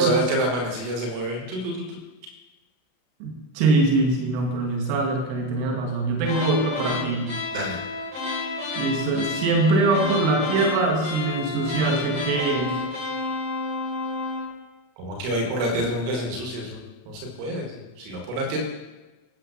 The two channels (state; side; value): late; left; 32 ms